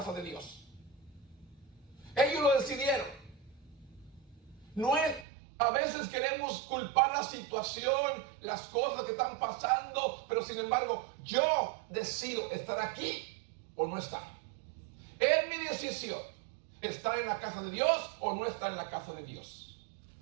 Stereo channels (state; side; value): drops out; left; at 5.2 s